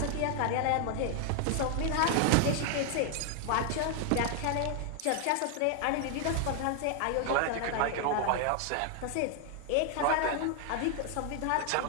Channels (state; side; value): different; both; correlation 0.00